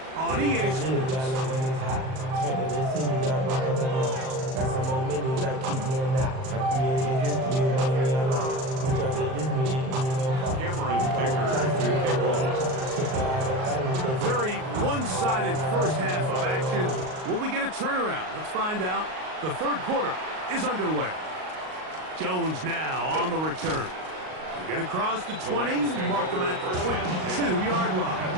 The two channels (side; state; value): left; late; 38 ms